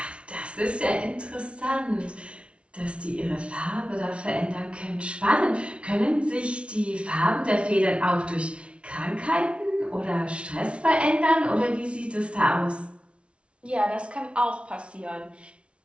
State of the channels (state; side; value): late; left; 0.060 ms